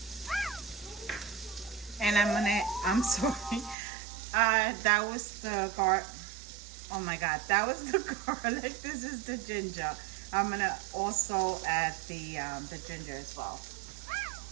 and I'm sorry, that was the oh my god, that was the garlic. This is the ginger. I'm gonna also add the ginger as well.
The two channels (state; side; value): drops out; left; at 3.8 s